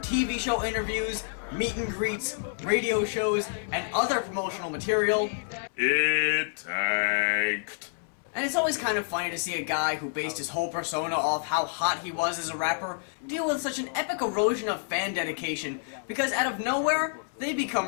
show interviews, meet and greets, radio shows, and other promotional material, it tanked. And it's always kind of funny to see a guy who based his whole persona off how hot he was as a rapper deal with such an epic erosion of fan dedication, because out of nowhere, they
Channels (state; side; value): silent; right; 59 dB below the other